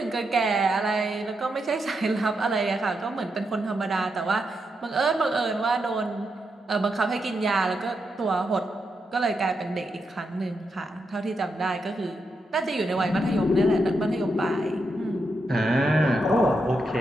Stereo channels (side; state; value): both; normal; correlation 0.84